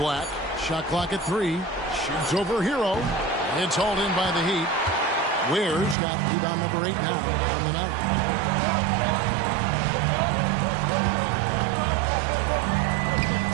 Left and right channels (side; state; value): left; drops out; at 6.0 s